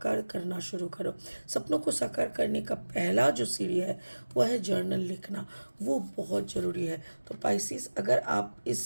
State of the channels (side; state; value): both; inverted; correlation -1.00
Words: करना शुरू करो। सपनों को साकार करने का पहला जो सीढ़ी है वह है जर्नल लिखना। वो बहुत ज़रूरी है। तो पाइसिस, अगर आप